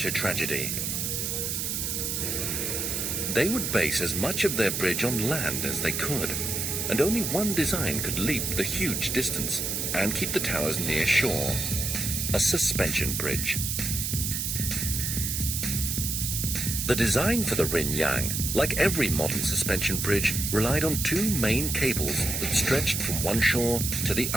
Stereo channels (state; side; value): noise; right; hiss, 1 dB below the sound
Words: a tragedy. They would base as much of their bridge on land as they could, and only one design could leap the huge distance and keep the towers near shore: a suspension bridge. The design for the Rinyang, like every modern suspension bridge, relied on 2 main cables that stretched from one shore to the